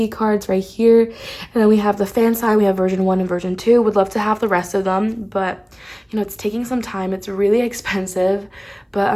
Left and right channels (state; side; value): identical; both; correlation 1.00